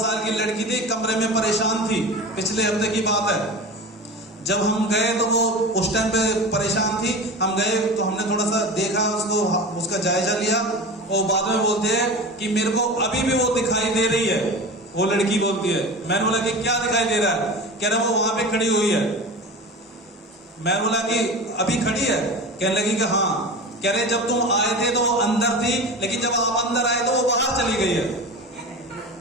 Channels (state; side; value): normal; both; correlation 0.31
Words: की लड़की थी, कमरे में परेशान थी, पिछले हफ्ते की बात है। जब हम गए तो वो उस टाइम पे परेशान थी। हम गए तो हमने थोड़ा सा देखा उसको, उसका जायजा लिया, और बाद में बोलते हैं कि मेरे को अभी भी वो दिखाई दे रही है। वो लड़की बोलती है, मैंने बोला कि क्या दिखाई दे रहा है? कह रहा वो वहां पे खड़ी हुई है। मैं बोला कि अभी खड़ी है? कहने लगी कि हाँ। कह रहे जब तुम आए थे तो वो अंदर थी, लेकिन जब आप अंदर आए तो वो बाहर चली गई है।